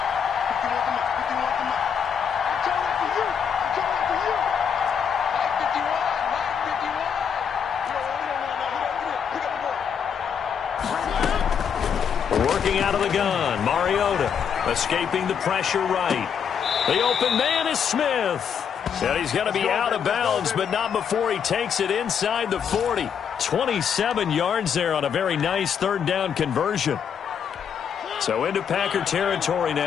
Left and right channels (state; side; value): quieter; right; 7.5 dB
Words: out of the gun. Mariota escaping the pressure right. The open man is Smith. And he's going to be out of bounds, but not before he takes it inside the 40. 27 yards there on a very nice third down conversion. So into Packer territory